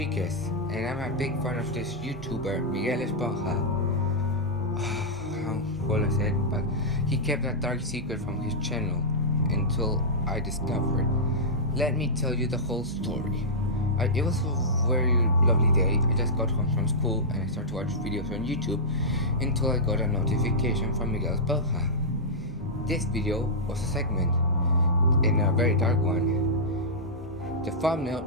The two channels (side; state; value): both; normal; correlation -0.11